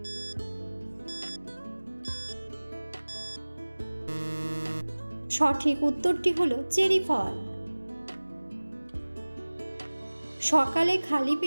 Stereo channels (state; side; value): inverted; both; correlation -1.00